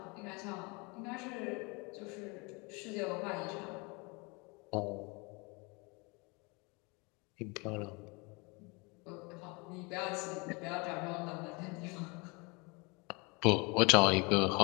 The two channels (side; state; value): right; quieter; 28.8 dB